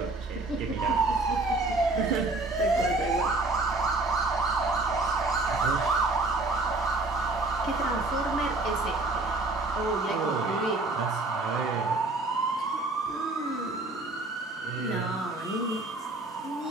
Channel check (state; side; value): quieter; left; 3.1 dB